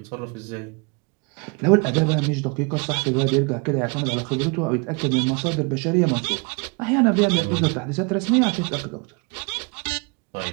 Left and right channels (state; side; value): quieter; left; 31.4 dB